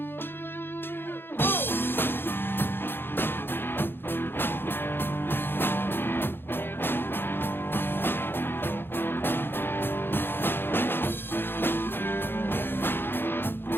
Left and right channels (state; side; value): late; right; 0.10 ms